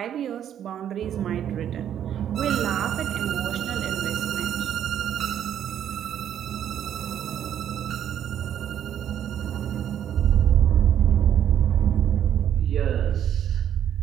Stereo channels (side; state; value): left; quieter; 9.9 dB